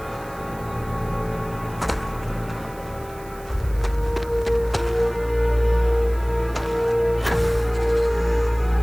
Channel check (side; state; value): right; noise; hiss, 22 dB below the sound